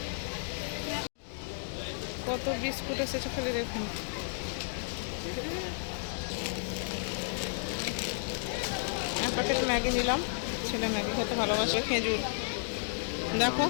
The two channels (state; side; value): silent; right; digital silence